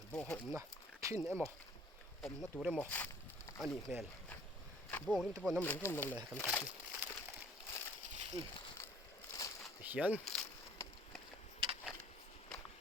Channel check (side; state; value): both; normal; correlation 0.55